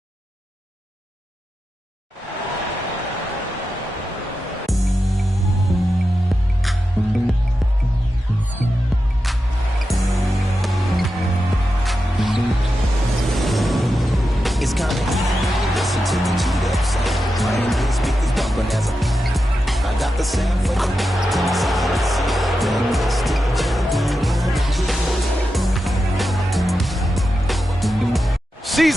It's kinda easy, listen to the cheat up sound. Playing these speakers bumping as I got the sound for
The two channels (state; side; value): normal; both; correlation 0.90